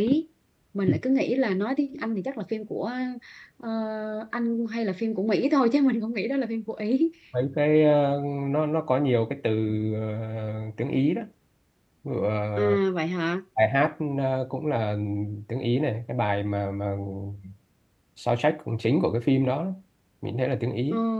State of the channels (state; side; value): identical; both; correlation 1.00